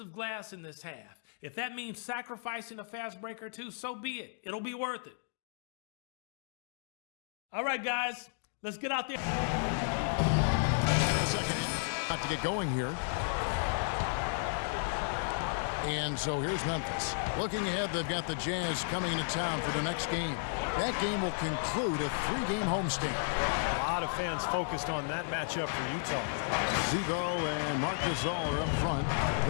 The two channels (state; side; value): silent; right; digital silence